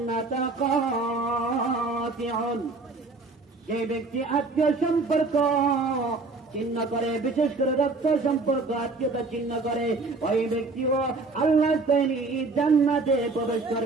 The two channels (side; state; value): left; quieter; 3.7 dB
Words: কাতিউন, যে ব্যক্তি আত্মীয় সম্পর্ক চিহ্ন করে, বিশেষ করে রক্ত সম্পর্ক আত্মীয়তা চিহ্ন করে, ওই ব্যক্তিও আল্লাহ তাআলা জান্নাতে প্রবেশ